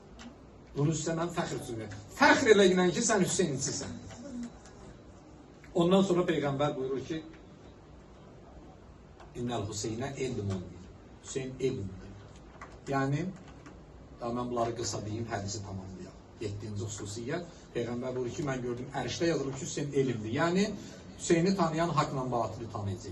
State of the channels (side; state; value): both; identical; correlation 1.00